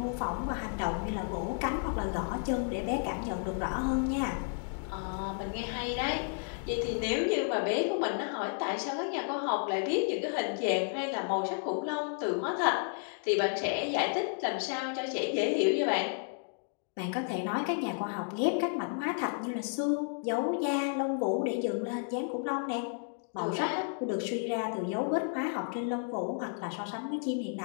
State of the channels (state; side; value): silent; right; 56 dB below the other